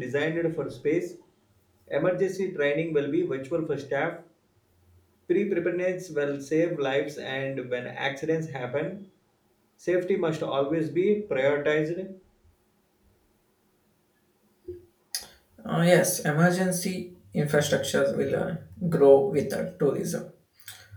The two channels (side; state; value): both; identical; correlation 1.00